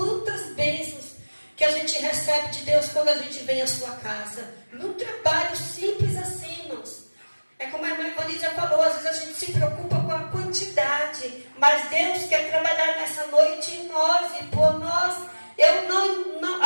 bênçãos que a gente recebe de Deus quando a gente vem à sua casa. Num trabalho simples assim, irmãos. É como a irmã Ivani já falou, às vezes a gente se preocupa com a quantidade, mas Deus quer trabalhar nessa noite em nós e por nós. Eu não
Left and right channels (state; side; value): inverted; both; correlation -1.00